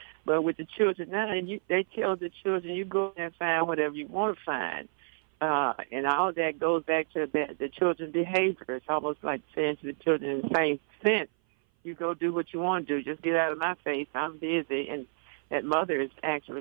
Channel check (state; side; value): silent; left; 56 dB below the other